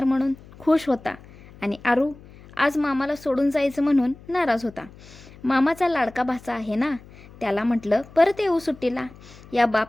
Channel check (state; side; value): noise; left; hum, 21 dB below the sound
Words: म्हणून खुश होता। आणि आरू आज मामाला सोडून जायचं म्हणून नाराज होता। मामाचा लाडका भाचा आहे ना, त्याला म्हटलं परत येऊ सुट्टीला। या